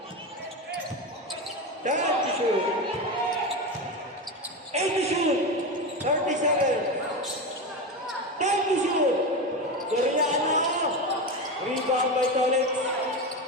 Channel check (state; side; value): normal; both; correlation 0.19